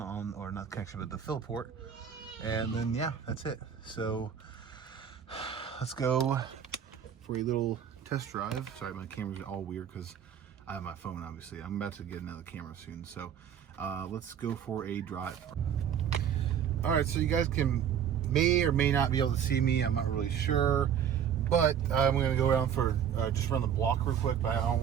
or not connection, but the fill port, and then yeah, that's it. So let's go for a little test drive. Sorry, my camera's all weird because I have my phone, obviously. I'm about to get another camera soon, so let's go for a drive. All right, so you guys may or may not be able to see me. I'm not really sure. But I'm gonna go around for just run the block real quick. But I don't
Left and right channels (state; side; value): quieter; left; 8.6 dB